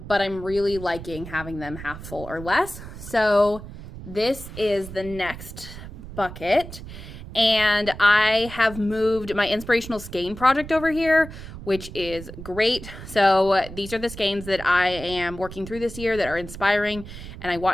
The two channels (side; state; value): right; noise; rumble, 13 dB below the sound